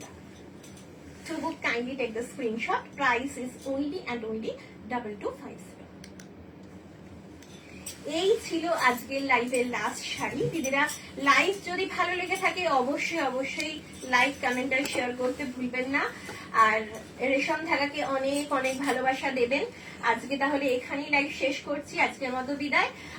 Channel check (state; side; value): identical; both; correlation 1.00